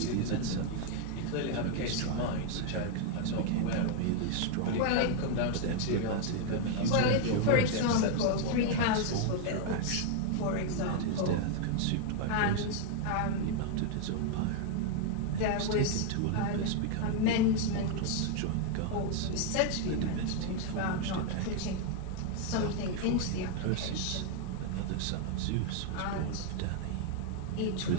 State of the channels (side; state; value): both; different; correlation 0.00